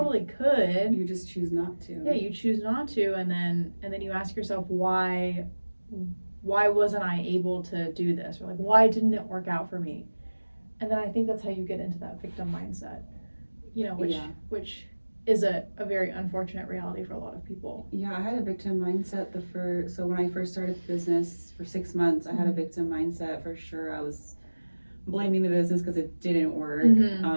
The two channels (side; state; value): both; inverted; correlation -1.00